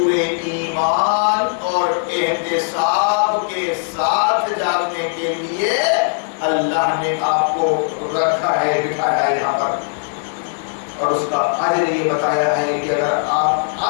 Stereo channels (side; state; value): right; silent; 65 dB below the other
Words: ایمان اور احتساب کے ساتھ جاگنے کے لیے اللہ نے آپ کو رکھا ہے، بٹھایا ہے یہاں پر، اور اس کا اجر یہ بتایا ہے کہ اگر آپ